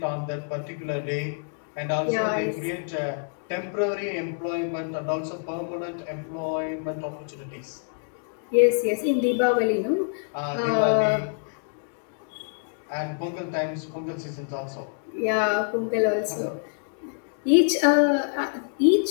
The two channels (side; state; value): right; silent; digital silence